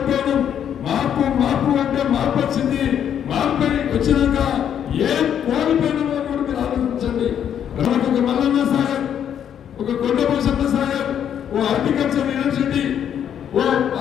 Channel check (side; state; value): right; quieter; 9.2 dB